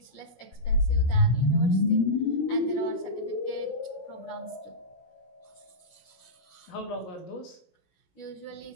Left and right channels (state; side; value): late; right; 17 ms